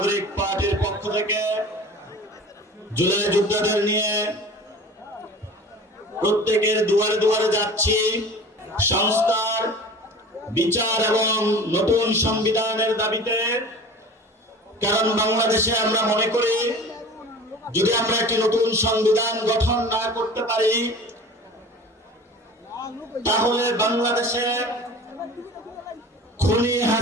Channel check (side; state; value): both; normal; correlation 0.40